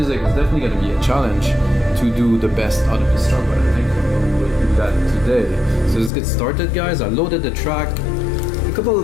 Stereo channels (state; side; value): drops out; right; at 6.1 s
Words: It's definitely going to be a challenge to do the best out of this track, but I think we'll do that today. So let's get started, guys. I loaded the track. A couple